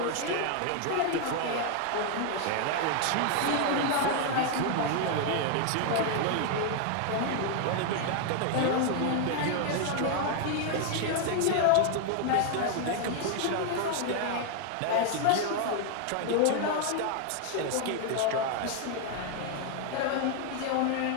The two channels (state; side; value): different; both; correlation 0.00